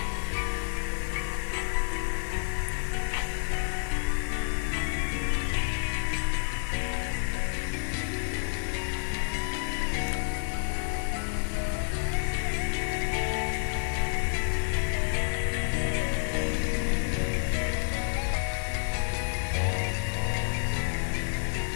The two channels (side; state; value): right; silent; digital silence